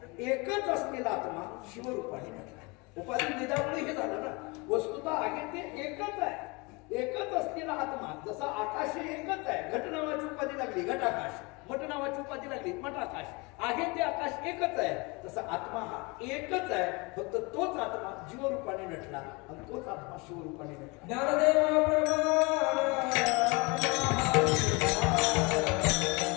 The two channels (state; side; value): quieter; right; 27.5 dB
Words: एकच असलेला आत्मा शिवरूपाने नटला. उपाधी भेदामुळे हे झालं ना. वस्तुतः आहे ते एकच आहे. एकच असलेला आत्मा जसा आकाश एकच आहे. घट नावाची उपाधी लागली घट आकाश, मठ नावाची उपाधी लागली मठ आकाश. आहे ते आकाश एकच आहे. तसा आत्मा हा एकच आहे. फक्त तोच आत्मा जीवरूपाने नटला आणि तोच आत्मा शिवरूपाने नटला. ज्ञानदेवा